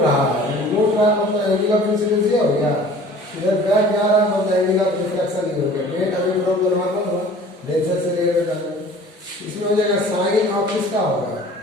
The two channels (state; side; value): normal; both; correlation 0.47